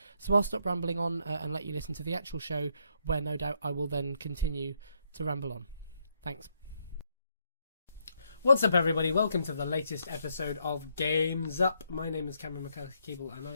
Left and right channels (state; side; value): inverted; both; correlation -0.75